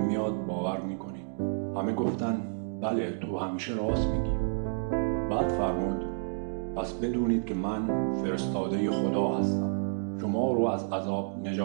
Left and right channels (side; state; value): left; silent; digital silence